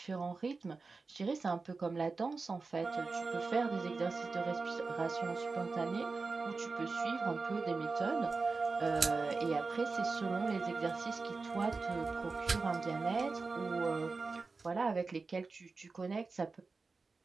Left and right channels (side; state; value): left; quieter; 4.1 dB